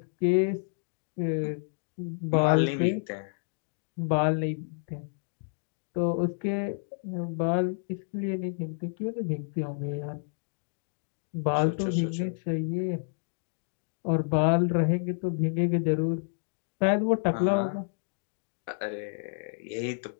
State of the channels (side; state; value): right; silent; digital silence